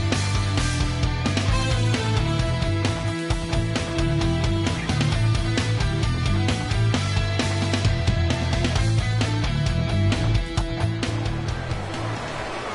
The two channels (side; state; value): both; identical; correlation 1.00